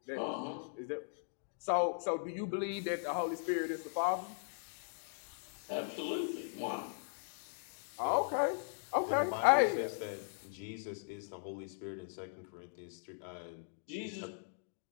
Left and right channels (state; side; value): silent; right; digital silence